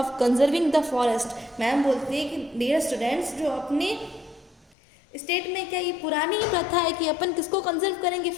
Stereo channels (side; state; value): right; drops out; at 4.7 s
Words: conserving the forest. Ma'am बोलती है कि डियर स्टूडेंट्स, जो अपने स्टेट में क्या ये पुरानी ही प्रथा है कि अपन किसको कंजर्व करेंगे,